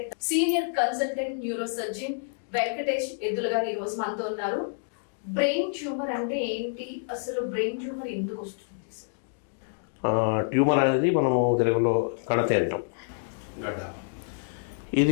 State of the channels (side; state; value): right; silent; digital silence